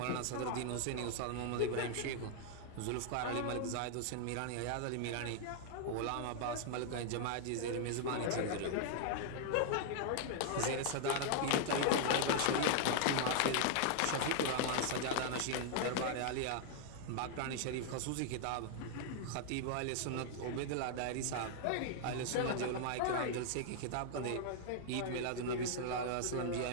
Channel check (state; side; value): different; both; correlation -0.01